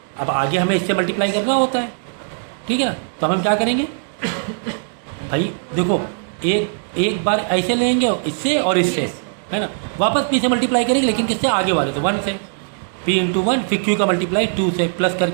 अब आगे हमें इससे मल्टीप्लाई करना होता है, ठीक है ना। तो हम क्या करेंगे भाई, देखो एक बार ऐसे लेंगे इससे और इससे, है ना, वापस P से मल्टीप्लाई करेंगे लेकिन किससे आगे वाले, तो 1 से, P इंटू 1 फिर Q का मल्टीप्लाई 2 से, प्लस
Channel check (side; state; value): left; silent; digital silence